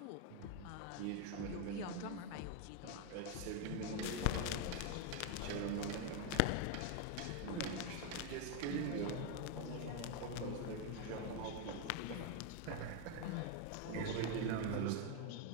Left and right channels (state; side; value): different; both; correlation 0.01